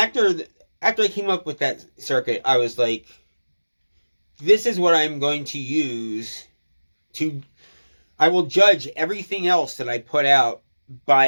I came up with that circuit, I was like, this is what I'm going to use I will judge everything else that I put out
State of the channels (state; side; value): inverted; both; correlation -1.00